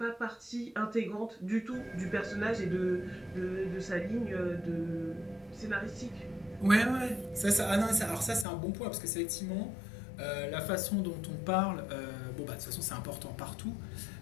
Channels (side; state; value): right; drops out; at 8.5 s